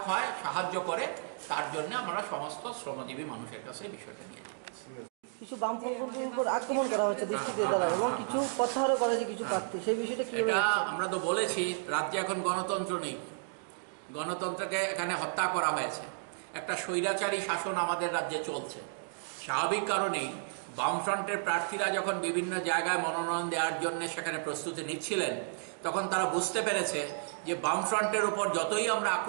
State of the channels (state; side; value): silent; left; digital silence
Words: হয়, সাহায্য করে, তার জন্য আমরা সমস্ত শ্রমজীবী মানুষের কাছে বিষয়টা নিয়ে যাচ্ছি। কিছু বামপন্থীর উপর আক্রমণ করা হচ্ছে দৃষ্টিতে দ্বারা এবং কিছু প্রত্যাহারও করা হয়েছে কিছু প্রার্থী, সেই বিষয়টা কি? এটা আমরা তো বলেছি রাজ্যে এখন গণতন্ত্র নেই, গণতন্ত্রকে এখানে হত্যা করা হয়েছে, একটা স্বৈরাচারী শাসন আমাদের রাজ্যে চলছে। স্বাভাবিক কারণেই বামফ্রন্টের প্রার্থীরা যখন বিভিন্ন জায়গায় মনোনয়ন দেওয়ার জন্য সেখানে প্রস্তুতি নিচ্ছিলেন, তখন তারা বুঝতে পেরেছে যে বামফ্রন্টের উপর যতই আমরা